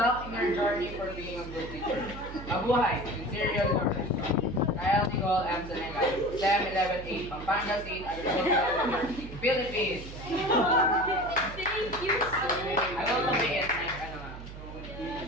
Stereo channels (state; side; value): noise; right; hum, 12 dB below the sound